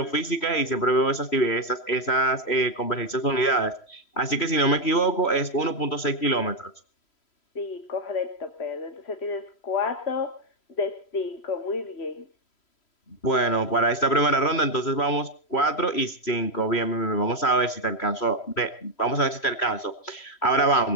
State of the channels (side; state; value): right; late; 3.0 ms